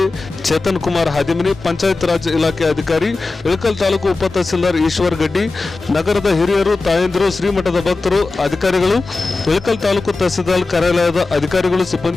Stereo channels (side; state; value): right; quieter; 3.6 dB